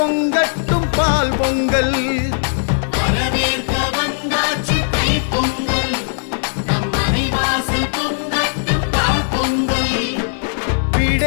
பால் பொங்கல். வரவேற்க வந்தாச்சு தை பொங்கல், நம் மனைவாசல் பொங்கட்டும் பால் பொங்கல்.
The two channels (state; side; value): silent; right; 59 dB below the other